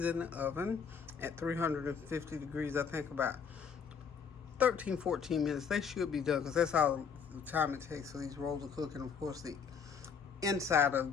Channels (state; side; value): quieter; right; 6.4 dB